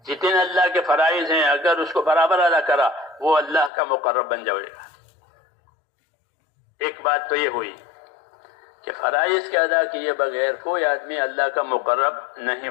جتنے اللہ کے فرائض ہیں اگر اس کو برابر ادا کرا وہ اللہ کا مقرب بن جائے گا۔ ایک بات تو یہ ہوئی کہ فرائض کے ادا کیے بغیر کوئی آدمی اللہ کا مقرب نہیں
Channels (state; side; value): drops out; right; at 3.7 s